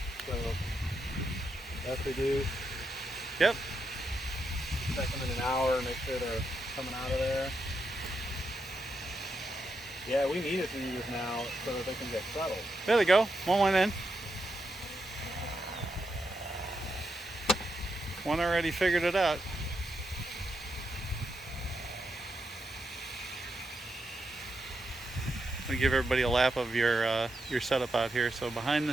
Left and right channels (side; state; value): both; normal; correlation 0.83